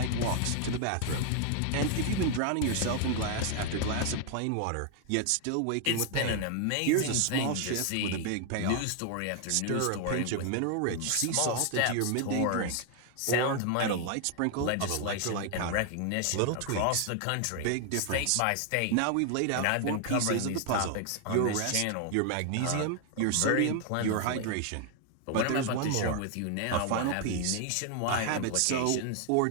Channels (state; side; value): different; both; correlation 0.00